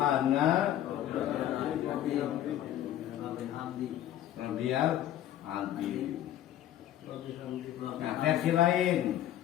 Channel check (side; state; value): right; quieter; 12.0 dB